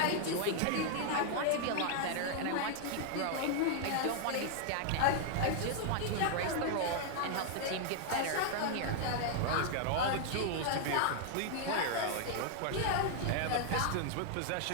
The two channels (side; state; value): both; different; correlation 0.00